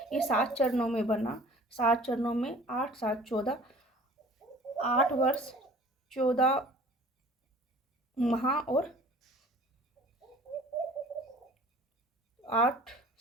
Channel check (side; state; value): both; normal; correlation 0.48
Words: ये 7 चरणों में बना। 7 चरणों में 8, 7, 14, 8 वर्ष 14 माह और 8,